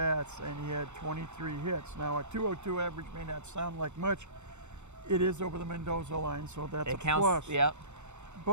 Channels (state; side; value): late; left; 0.83 ms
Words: and he had 23 hits. Now, a 202 average may not sound like much. It is over the Mendoza line, so that's a plus. Yep.